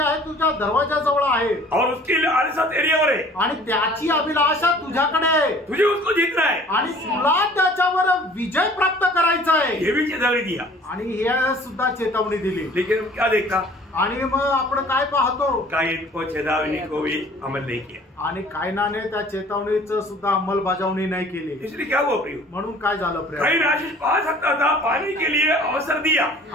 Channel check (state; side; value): normal; both; correlation 0.50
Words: आहे तुझ्या दरवाजाजवळ आहे, और उसकी लालसा तेरीवर है, आणि त्याची अभिलाषा तुझ्याकडे आहे, तुझे उसको जीतना है, आणि तुला त्याच्यावर विजय प्राप्त करायचा आहे। ये भी चेतावनी दिया, आणि हे सुद्धा चेतावणी दिली। लेकिन क्या देखा? आणि मग आपण काय पाहतो, कायन को चेतावनी को भी अमल नहीं किया आणि कायनाने त्या चेतावणीचं सुद्धा अंमलबजावणी नाही केली. इसलिए क्या हुआ प्रियो, म्हणून काय झालं प्रिय, कायन आशीष पा सकता था, पाने के लिए अवसर दिया,